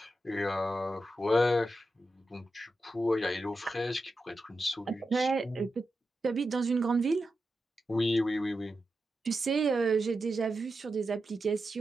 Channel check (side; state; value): both; normal; correlation 0.89